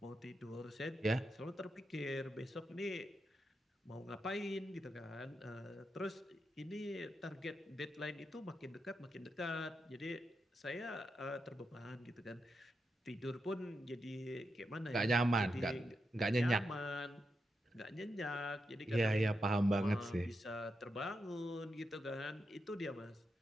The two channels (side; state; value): both; normal; correlation 0.86